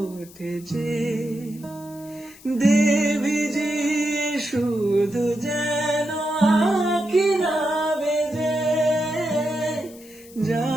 যে, দেবী যে শুধু যেন আঁখি না বেজে।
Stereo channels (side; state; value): left; noise; hiss, 22 dB below the sound